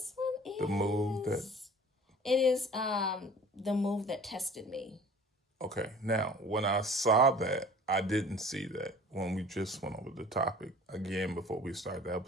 one is The Move That. It is The Move That Tested Me. Okay, now when I saw that, I didn't see that when we just went over the topic again before we started the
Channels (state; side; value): normal; both; correlation 0.47